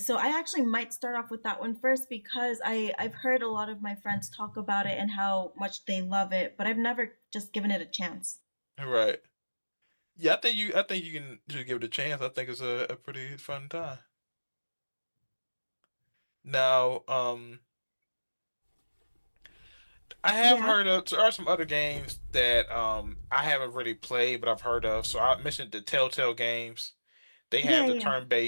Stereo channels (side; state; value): both; inverted; correlation -1.00